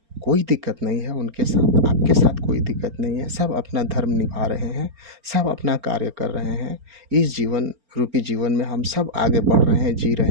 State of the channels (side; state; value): left; late; 4.3 ms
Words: कोई दिक्कत नहीं है उनके साथ, आपके साथ कोई दिक्कत नहीं है। सब अपना धर्म निभा रहे हैं, सब अपना कार्य कर रहे हैं। इस जीवन रूपी जीवन में हम सब आगे बढ़ रहे हैं, जी